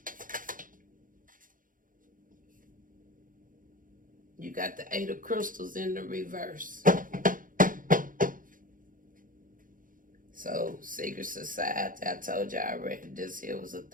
You got the Eight of Crystals in the reverse. So, secret society, I told you already, this here was a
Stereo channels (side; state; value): left; late; 0.39 ms